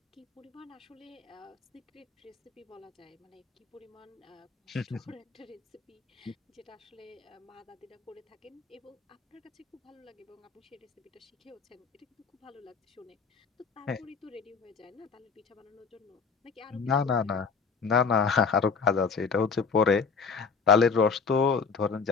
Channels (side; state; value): right; quieter; 5.4 dB